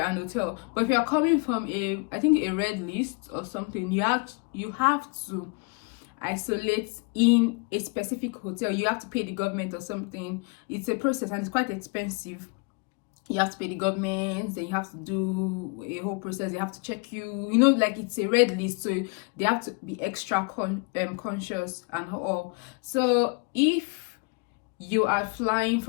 hotel. But if you're coming from a red list or something, you have to isolate in a specific hotel. You have to pay the government or something. It's a process and it's quite expensive. You have to pay the government, then you have to do a whole process. They have to check you, like it's a red list, so they have to be extra conscious and all. So if you are flying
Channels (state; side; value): quieter; right; 31.7 dB